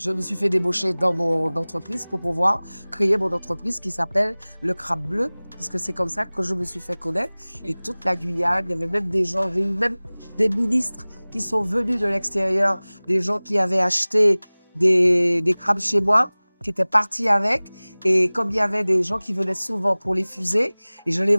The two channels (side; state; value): both; inverted; correlation -1.00